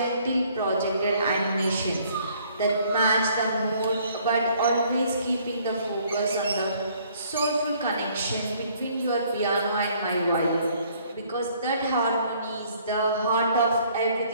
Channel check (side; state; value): both; inverted; correlation -0.61